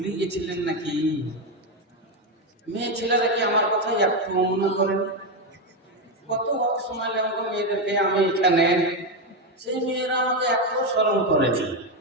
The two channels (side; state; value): both; normal; correlation 0.09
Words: গেছিলেন নাকি? মেয়ে ছেলেরা কি আমার কথা একটু মনে করেন? কত সময় লাগলো মেয়েদেরকে আমি এখানে, সেই মেয়েরা আমাকে এত স্মরণ করেছে।